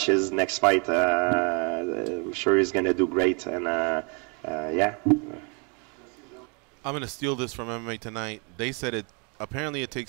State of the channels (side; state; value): left; quieter; 34.8 dB